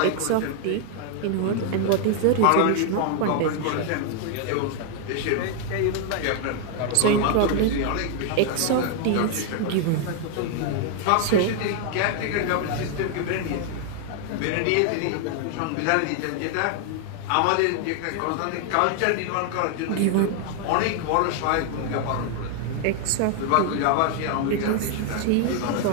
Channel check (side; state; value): both; different; correlation 0.00